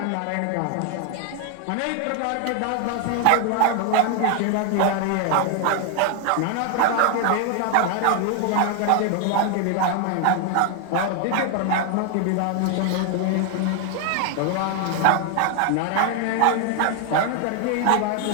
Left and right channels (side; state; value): both; different; correlation 0.01